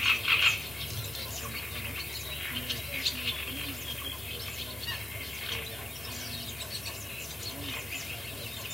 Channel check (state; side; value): normal; both; correlation 0.93